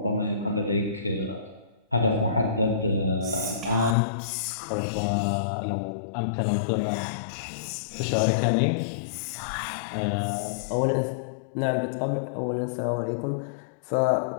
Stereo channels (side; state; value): right; drops out; at 4.0 s